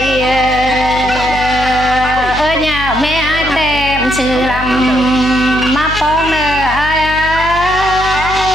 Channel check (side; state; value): left; noise; hum, 10 dB below the sound